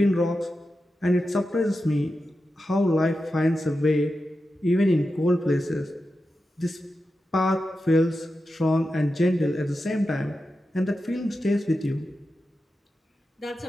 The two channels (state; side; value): normal; both; correlation 0.90